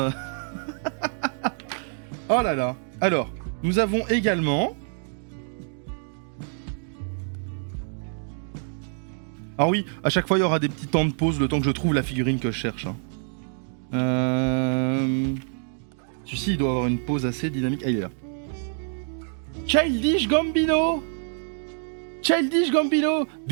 Oh là là. Alors, nous avons également... Alors oui, à chaque fois il y aura des petits temps de pause, le temps que je trouve la figurine que je cherche. Hein. Celui-ci il doit avoir une pause assez dynamique. Ah, il est là. Childish Gambino. Childish Gambino.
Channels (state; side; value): silent; left; 61 dB below the other